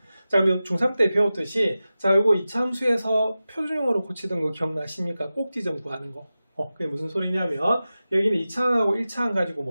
자, 그럼 중3 때 배웠듯이 자, 요거 2차 함수에서 표준형으로 고치던 거 기억나십니까? 꼭지점 구하는 거. 그게 무슨 소리냐면 여기는 2차항하고 1차항 가지고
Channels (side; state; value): both; inverted; correlation -0.94